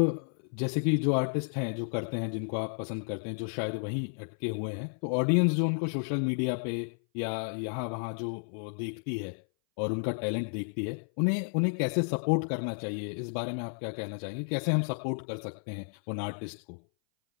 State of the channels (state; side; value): silent; right; 57 dB below the other